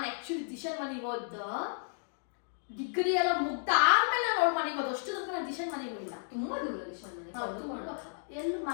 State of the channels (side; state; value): right; silent; digital silence